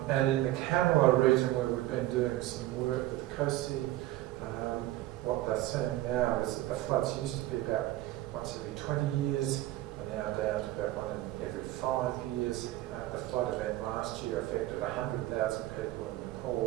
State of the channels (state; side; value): quieter; left; 15.8 dB